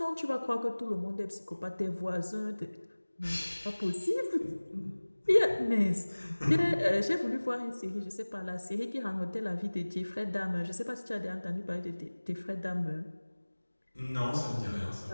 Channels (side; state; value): both; inverted; correlation -1.00